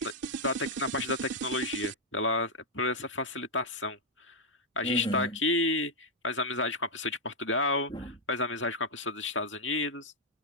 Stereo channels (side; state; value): both; normal; correlation -0.03